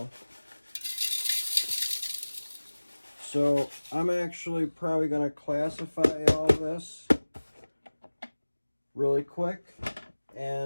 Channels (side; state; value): both; inverted; correlation -1.00